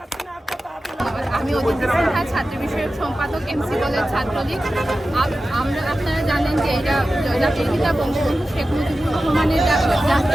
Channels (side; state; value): both; normal; correlation 0.94